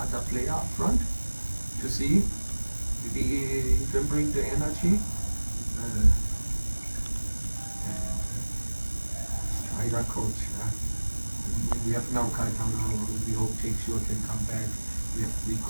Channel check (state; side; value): inverted; both; correlation -1.00